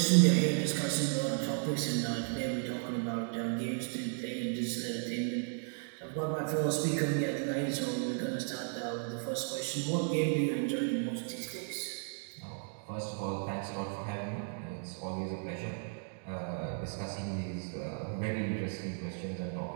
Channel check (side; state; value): left; silent; 55 dB below the other